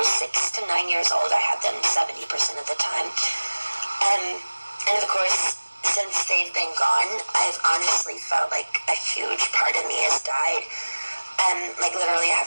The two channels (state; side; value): inverted; both; correlation -1.00